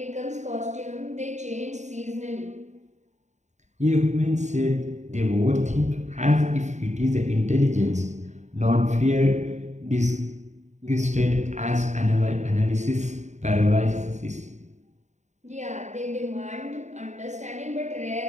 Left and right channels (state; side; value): late; left; 0.34 ms